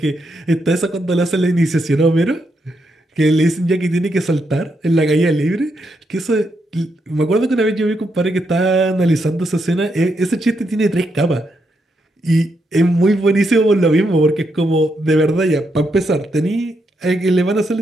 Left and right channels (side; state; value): both; normal; correlation 0.80